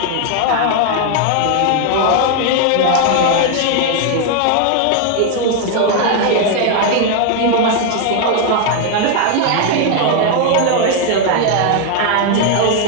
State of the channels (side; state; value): both; different; correlation 0.00